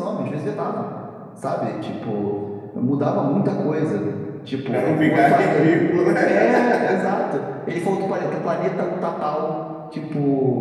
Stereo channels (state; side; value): identical; both; correlation 1.00